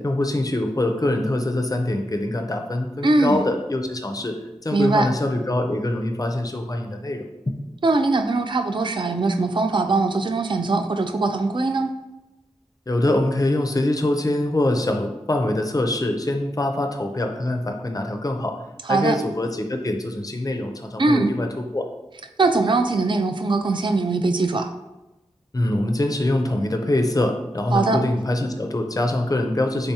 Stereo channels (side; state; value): both; normal; correlation 0.82